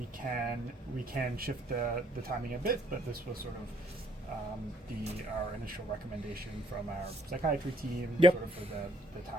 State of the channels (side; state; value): both; normal; correlation 0.66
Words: can shift the timing a bit, but this was sort of our initial recommendation from our psychiatry team, Yep. sort of for the